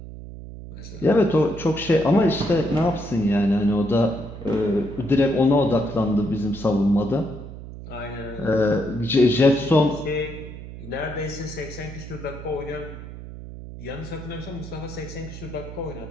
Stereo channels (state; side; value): noise; right; hum, 12 dB below the sound